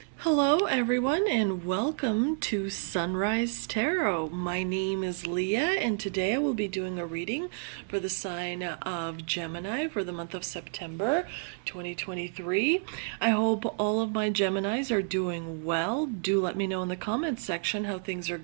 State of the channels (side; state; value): left; silent; digital silence